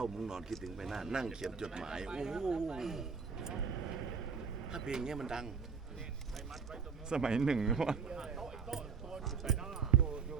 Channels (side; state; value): left; quieter; 5.9 dB